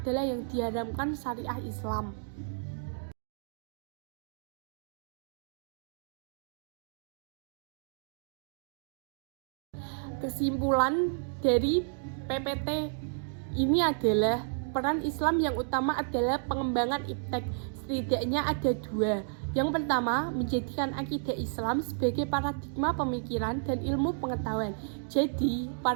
yang diharamkan syariah Islam. Kesimpulan dari PPT ini adalah peran Islam yang utama adalah pengembangan IPTEK. Setidaknya ada 2, Yang pertama, menjadikan akidah Islam sebagai paradigma pemikiran dan ilmu pengetahuan. Jadi,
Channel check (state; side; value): silent; left; digital silence